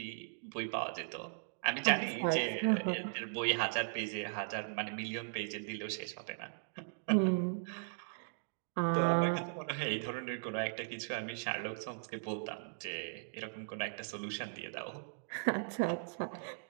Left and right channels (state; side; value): silent; left; digital silence